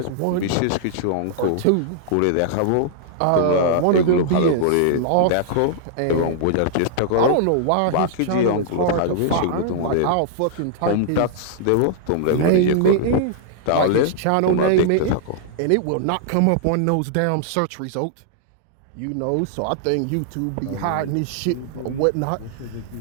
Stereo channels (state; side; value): different; both; correlation -0.01